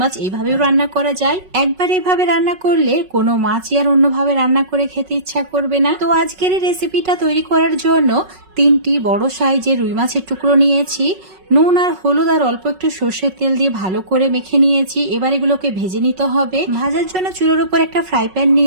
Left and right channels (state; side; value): late; left; 5.4 ms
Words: এইভাবেও রান্না করা যায়। একবার এইভাবে রান্না করলে কোনো মাছই আর অন্যভাবে রান্না করে খেতে ইচ্ছা করবে না। তো আজকের এই রেসিপিটা তৈরি করার জন্য 3টি বড় সাইজের রুই মাছের টুকরো নিয়েছি। নুন আর হলুদ আর অল্প একটু সর্ষের তেল দিয়ে ভালো করে মেখে নিয়েছি। এবার এগুলোকে ভেজে নিতে হবে। ভাজার জন্য চুলোর উপর একটা ফ্রাই প্যান